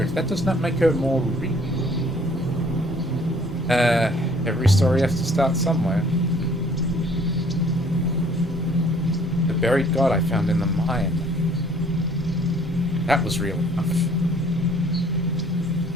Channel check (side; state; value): both; normal; correlation 0.57